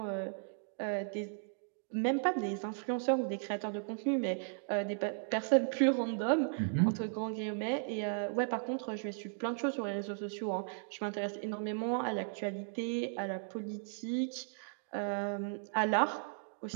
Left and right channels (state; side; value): silent; left; digital silence